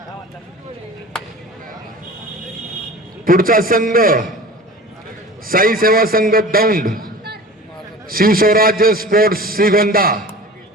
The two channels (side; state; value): both; normal; correlation 0.38